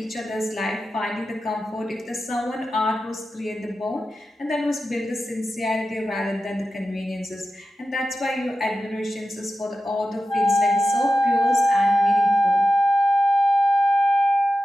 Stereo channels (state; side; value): normal; both; correlation 0.92